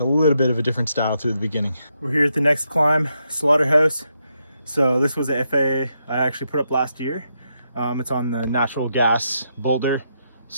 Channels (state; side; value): inverted; both; correlation -0.81